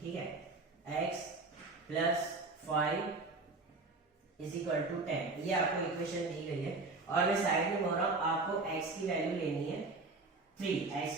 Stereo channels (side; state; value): left; quieter; 3.5 dB